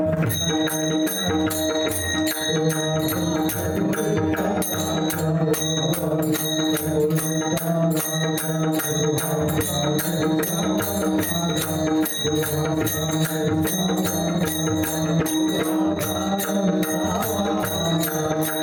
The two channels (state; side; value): identical; both; correlation 1.00